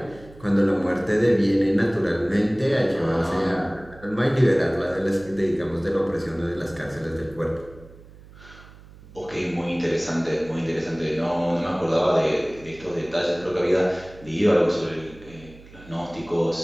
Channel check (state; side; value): noise; right; hum, 21 dB below the sound